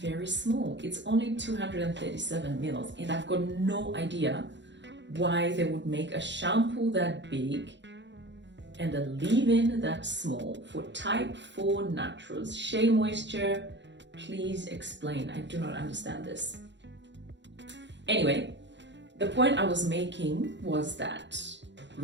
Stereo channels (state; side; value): late; left; 0.52 ms